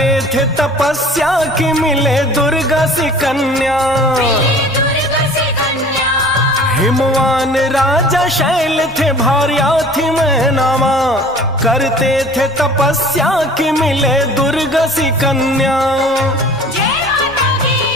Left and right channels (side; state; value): both; normal; correlation 0.46